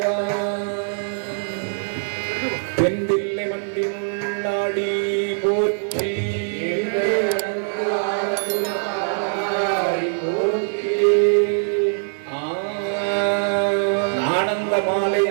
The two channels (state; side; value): silent; left; 59 dB below the other